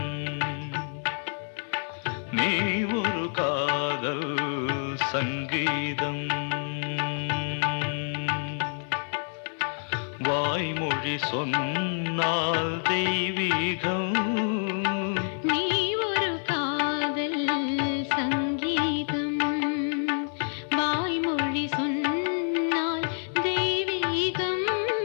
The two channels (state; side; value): silent; right; digital silence